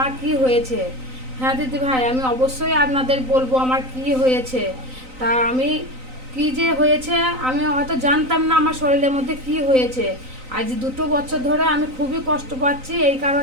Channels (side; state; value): left; late; 3.9 ms